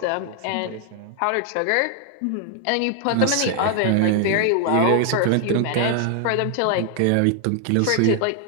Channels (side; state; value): both; different; correlation 0.00